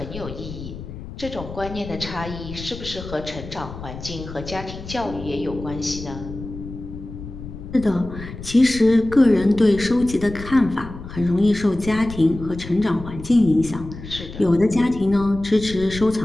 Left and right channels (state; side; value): noise; left; rumble, 12 dB below the sound